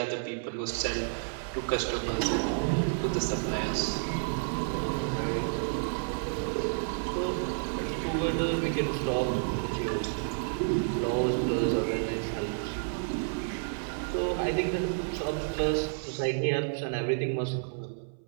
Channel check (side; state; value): left; silent; 58 dB below the other